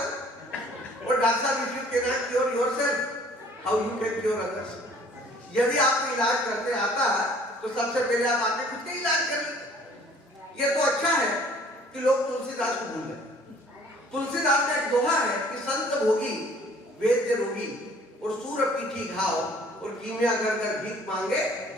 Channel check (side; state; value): both; normal; correlation 0.55